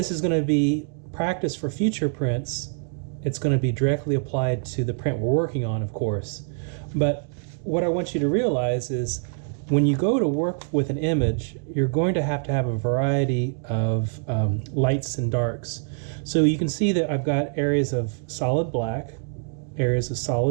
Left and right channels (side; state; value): left; silent; 62 dB below the other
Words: is going to be practice for future prints. It's going to be directly applied to the print we're working on, of course. But what I want you to realize is when you go to work with an image, you're going to have a variety of lights and darks. So you can see that I've got areas of solid black, areas of